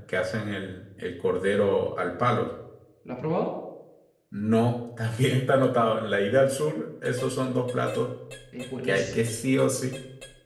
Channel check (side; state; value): both; identical; correlation 1.00